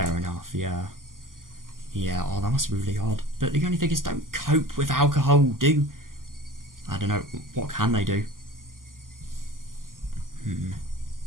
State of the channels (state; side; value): late; left; 0.91 ms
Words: enough, yeah. Yeah, oh, that must be really hard. But the only thing is, don't cope with alcohol, do... I don't know, what can they do?